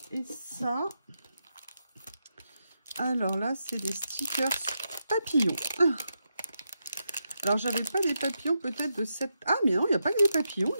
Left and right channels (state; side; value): inverted; both; correlation -0.85